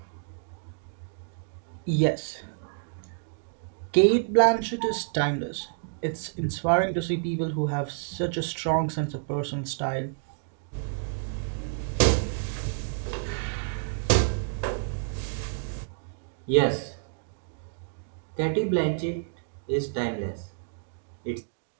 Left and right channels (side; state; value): left; silent; digital silence